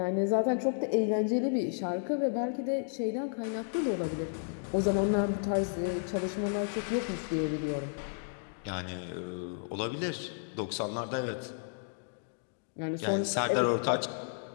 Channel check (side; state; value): right; silent; digital silence